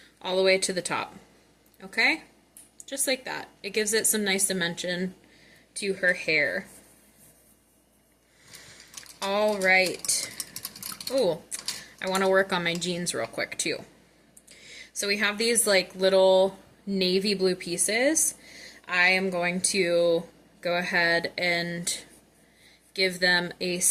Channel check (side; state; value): both; identical; correlation 1.00